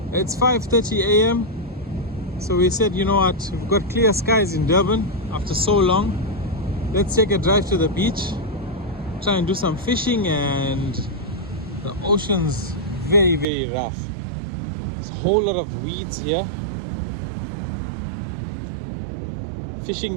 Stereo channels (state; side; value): drops out; left; at 13.5 s